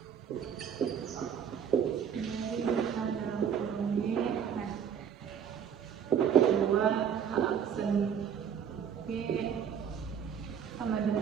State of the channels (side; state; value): left; quieter; 8.0 dB